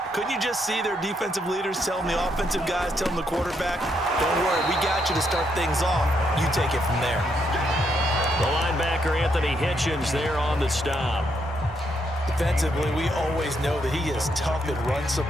Couldn't you just see their defensive leaders telling the offensive guys, telling the quarterback, don't worry, we got you to start things off. You take it from there. The linebacker, Anthony Hitchens, there on the stop. Defensively, we always know that he is tough in run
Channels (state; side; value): normal; both; correlation 0.76